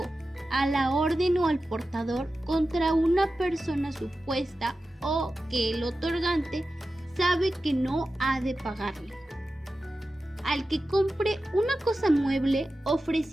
a la orden o al portador contra una persona supuesta o que el otorgante sabe que no ha de pagarle. Al que compre una cosa mueble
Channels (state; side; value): normal; both; correlation 0.93